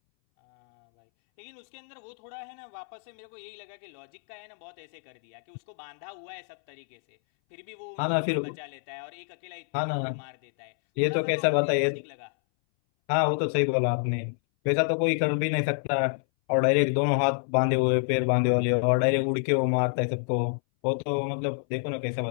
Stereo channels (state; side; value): silent; right; 60 dB below the other